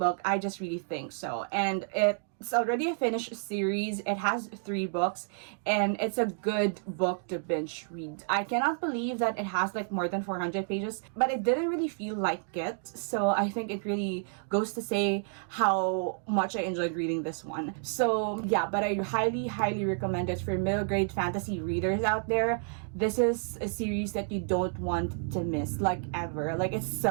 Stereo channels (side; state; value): left; silent; 57 dB below the other